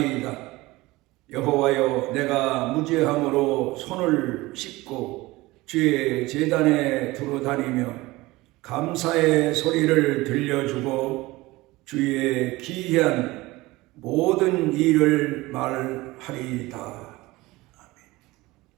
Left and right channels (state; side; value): quieter; left; 20.3 dB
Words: 여호와여 내가 무죄함으로 손을 씻고 주의 제단에 두루다니며 감사의 소리를 들려주고 주의 기이한 모든 일을 말하리이다.